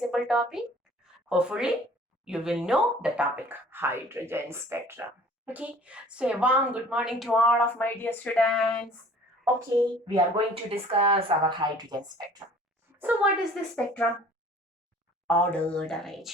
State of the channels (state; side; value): normal; both; correlation 0.51